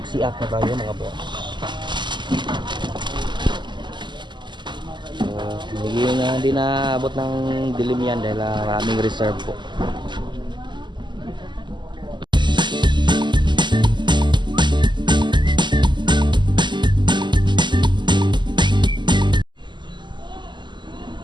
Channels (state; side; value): late; left; 0.22 ms